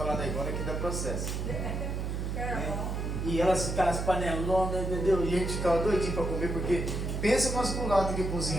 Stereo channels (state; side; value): noise; right; hum, 2 dB below the sound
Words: da Ivona que dá processo. E elas ficavam as panelonas, entendeu? E a gente ficava doidinho para comer, porque pensa no masculado que